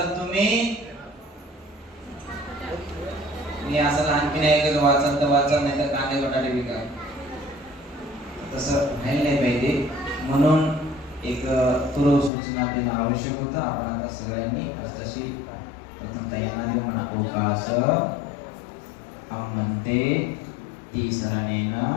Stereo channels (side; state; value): right; drops out; at 12.3 s